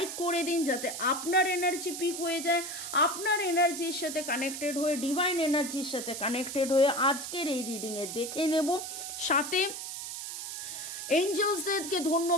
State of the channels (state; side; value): noise; right; hiss, 7 dB below the sound